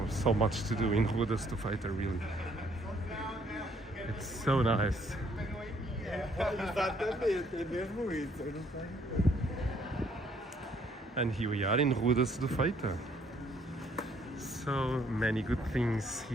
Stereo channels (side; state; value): both; normal; correlation 0.65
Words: much to do in Rua da Cedofeita, really. It's so nice. And here we are in Rua da Cedofeita. So many good things